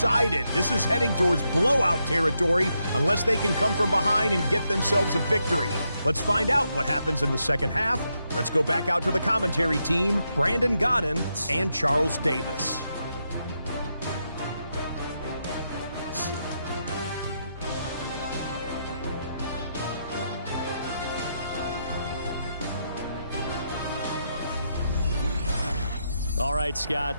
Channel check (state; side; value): inverted; both; correlation -0.82